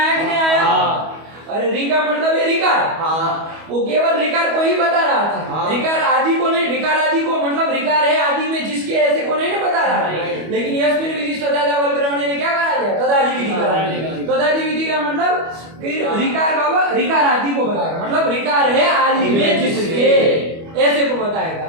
कि नहीं आया, अरे रिका मतलब है रिकार, वो केवल रिकार को ही बता रहा था, रिकार आदि को नहीं, रिकार आदि को मतलब रिकार है आदि में जिसके ऐसे को नहीं बता रहा, लेकिन यस्मिन् विधिश तदादा वलग्रहणे ने क्या करा दिया, तदादि विधि करा दिया, तदादि विधि का मतलब कि रिकार का रिकार आदि को बताएगा, मतलब रिकार है आदि में जिसके ऐसे को बताएगा,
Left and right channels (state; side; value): late; left; 25 ms